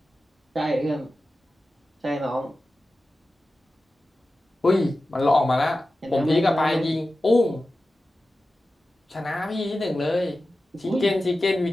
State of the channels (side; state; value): both; normal; correlation 0.94